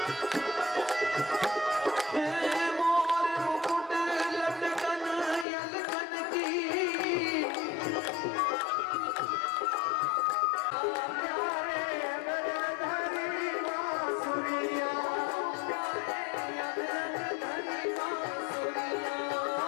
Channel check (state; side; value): drops out; right; at 5.5 s